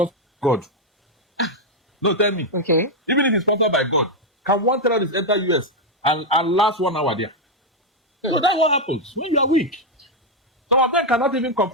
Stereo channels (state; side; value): normal; both; correlation 0.02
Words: by God. No, tell me. Okay. Even if it's sponsored by God, can one terrorist enter US and last 1 hour there? So that's what happens when you are weak. Some of them cannot even